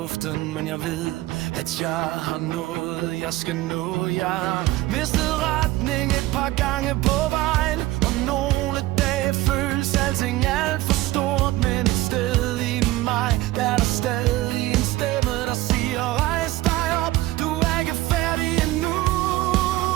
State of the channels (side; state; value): left; quieter; 17.4 dB